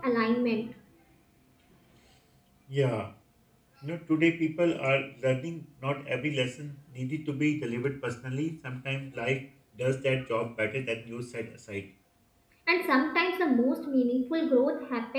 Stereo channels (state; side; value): identical; both; correlation 1.00